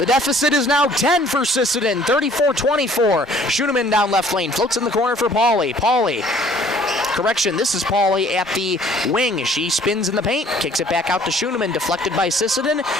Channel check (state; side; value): normal; both; correlation 0.56